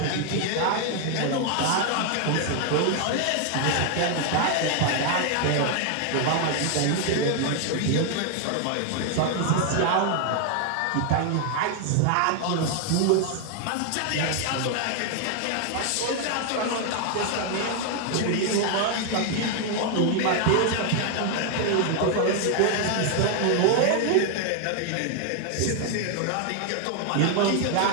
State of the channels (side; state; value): both; different; correlation 0.00